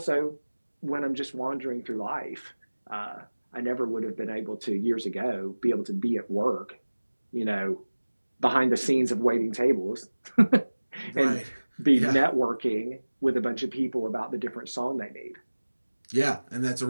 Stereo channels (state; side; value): inverted; both; correlation -1.00